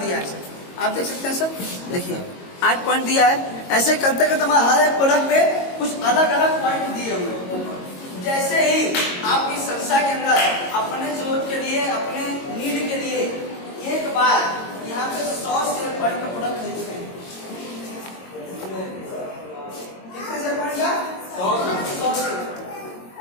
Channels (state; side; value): late; right; 22 ms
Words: दिया है सर, आप देख सकते हैं सर, देखिए 8 पॉइंट दिया है। ऐसे करते करते हमारे हर एक प्रोडक्ट पे कुछ अलग अलग पॉइंट दिए हुए। जैसे ही आप इस संस्था के अंदर अपने जरूरत के लिए, अपने नीड के लिए एक बार यहाँ पे 100 शेयर पॉइंट का प्रोडक्ट खरीदते हैं। कितने शेयर पॉइंट का?